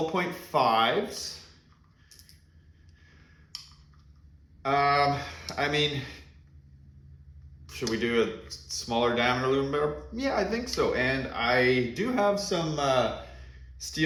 I mean, should we do a smaller diameter aluminum barrel? Yeah, I think so. And I do have some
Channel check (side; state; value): both; identical; correlation 1.00